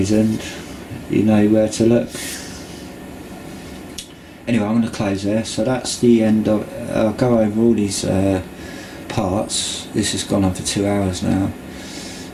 you know where to look. Anyway, I'm going to close there. So that's the end of. I'll go over all these parts. This has gone on for 2 hours now,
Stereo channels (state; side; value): identical; both; correlation 1.00